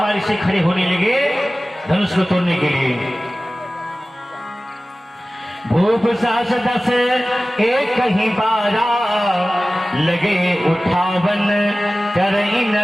से खड़े होने लगे धनुष को तोड़ने के लिए। भूप सास 10 एक ही बारा, लगे उठावन करई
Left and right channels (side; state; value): both; normal; correlation 0.97